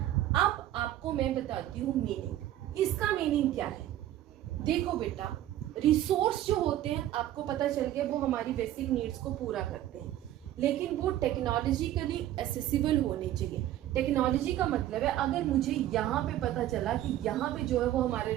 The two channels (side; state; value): left; quieter; 13.1 dB